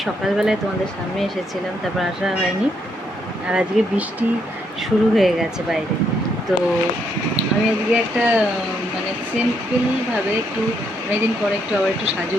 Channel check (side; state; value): both; normal; correlation 0.75